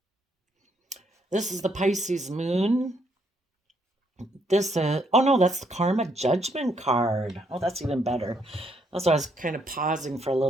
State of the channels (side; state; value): both; normal; correlation 0.72